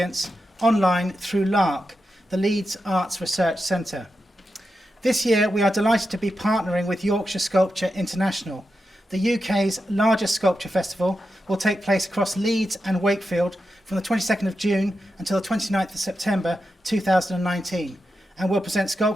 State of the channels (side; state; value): both; normal; correlation 0.89